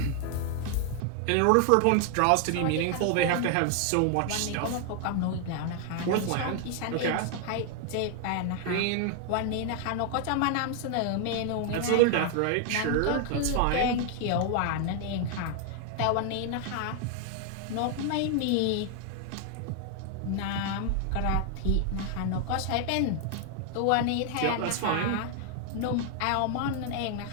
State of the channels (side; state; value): both; different; correlation 0.00